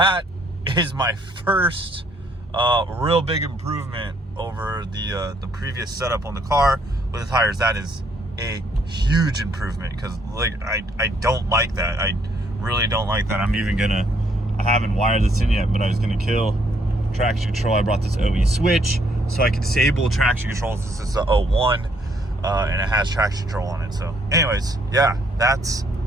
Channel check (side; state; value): both; normal; correlation 0.69